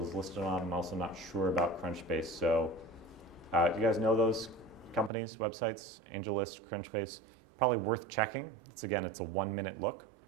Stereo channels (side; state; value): left; drops out; at 5.1 s